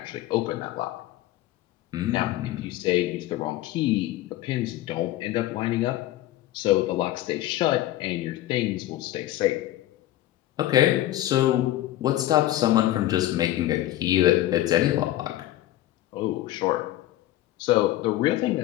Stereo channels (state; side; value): quieter; right; 14.8 dB